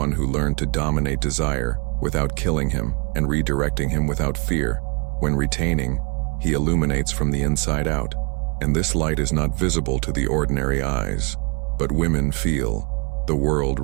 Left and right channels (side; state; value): left; quieter; 33.3 dB